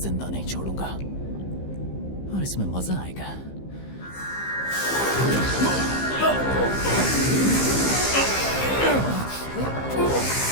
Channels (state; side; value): late; right; 15 ms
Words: नहीं छोड़ूंगा, और इसमें मजा आएगा।